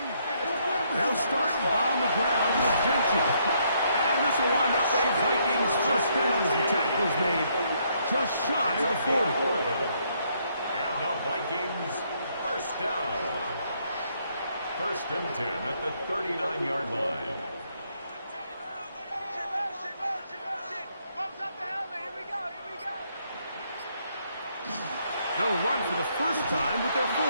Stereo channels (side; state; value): both; inverted; correlation -0.71